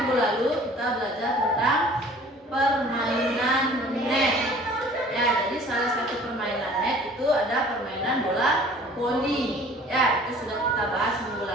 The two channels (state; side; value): normal; both; correlation 0.50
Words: lalu kita belajar tentang permainan net. Ya, jadi salah satu permainan net itu ada permainan bola voli. Ya, itu sudah kita bahas minggu